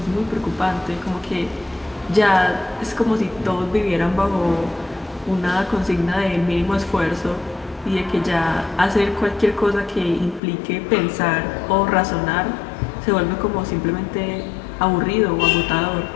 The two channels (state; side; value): drops out; right; at 10.4 s